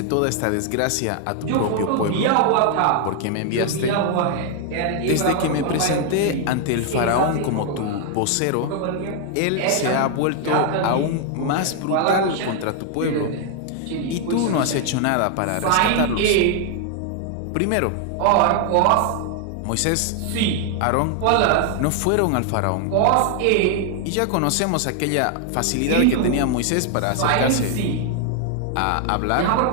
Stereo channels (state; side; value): different; both; correlation 0.00